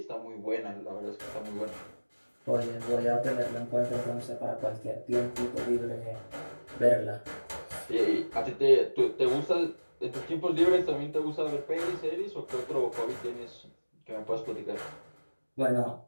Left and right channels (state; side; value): inverted; both; correlation -1.00